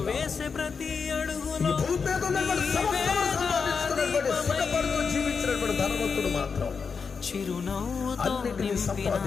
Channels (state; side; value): quieter; right; 5.5 dB